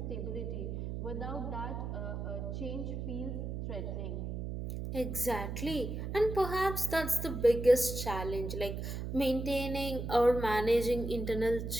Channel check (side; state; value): right; noise; hum, 4 dB below the sound